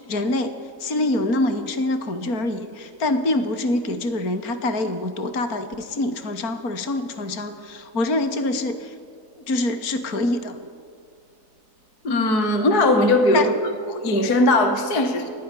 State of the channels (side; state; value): right; late; 4.4 ms